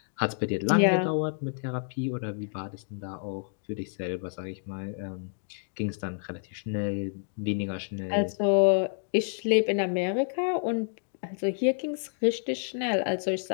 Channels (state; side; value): silent; right; digital silence